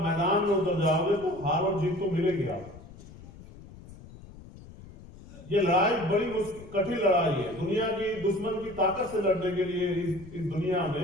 मैदान में उतर जाओगे तो हार और जीत तो मिलेगी आपको। ये लड़ाई बड़ी कठिन लड़ाई है, दुनिया की दुश्मन की ताकत से लड़ने के लिए इस दुनिया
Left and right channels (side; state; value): left; noise; rumble, 18 dB below the sound